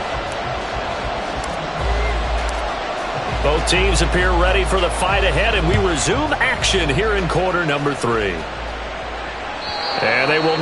Both teams appear ready for the fight ahead, and we resume action here in quarter number 3. And they will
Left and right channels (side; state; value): both; identical; correlation 1.00